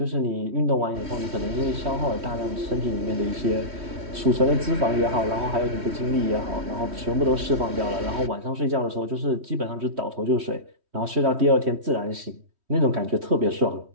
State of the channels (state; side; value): late; left; 3.1 ms